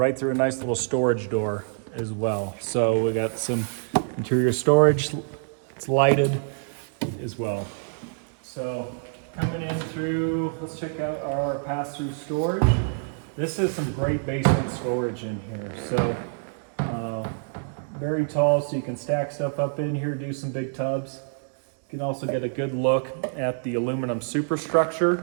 through a nice little storage door as well. So we got some interior storage. It's lighted as well. So coming in through, let's check out our pass-through storage. This is some great basement storage in here. So very tall, so you can stack stuff up in here, do some big tubs. You can also get a good look at the aluminum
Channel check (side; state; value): left; silent; digital silence